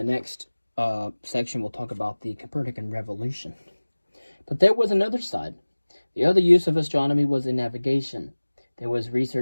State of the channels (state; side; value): inverted; both; correlation -1.00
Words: next section we'll talk about the Copernican revolution. But there was another side. The other use of astronomy was in navigation. There was